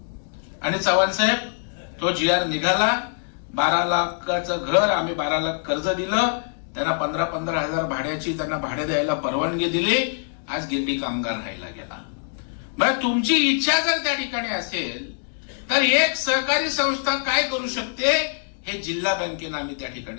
आणि चव्हाण साहेब तो GR निघाला. 12 लाखाचं घर आम्ही 12 लाख कर्ज दिलं. त्यांना 15-15 हजार भाड्याची त्यांना भाडे द्यायला परवानगी दिली. आज गिरणी कामगार राहायला गेला. मग तुमची इच्छा जर त्या ठिकाणी असेल तर एक सहकारी संस्था काय करू शकते हे जिल्हा बँकेनं आम्ही त्या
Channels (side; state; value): right; silent; digital silence